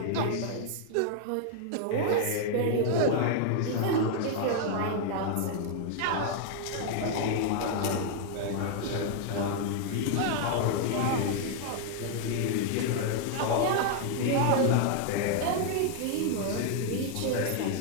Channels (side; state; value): both; different; correlation 0.00